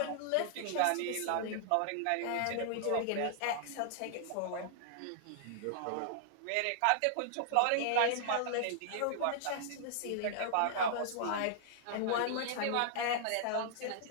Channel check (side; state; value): both; different; correlation -0.01